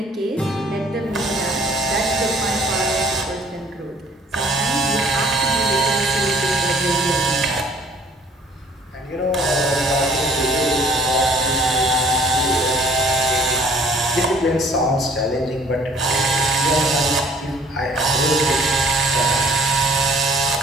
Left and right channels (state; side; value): normal; both; correlation 0.56